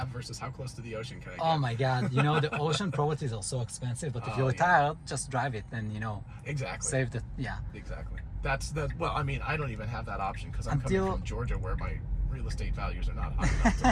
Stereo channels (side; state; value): both; identical; correlation 1.00